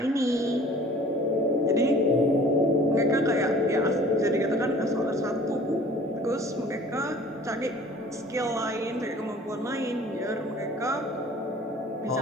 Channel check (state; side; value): normal; both; correlation 0.49